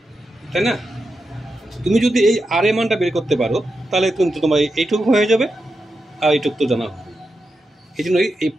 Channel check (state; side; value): normal; both; correlation 0.88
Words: তাই না? তুমি যদি এই আর এর মানটা বের করতে পারো তাহলে কিন্তু তোমার এইটুকু হয়ে যাবে, আর এইটুকু তো জানা হবে। এই জন্য এই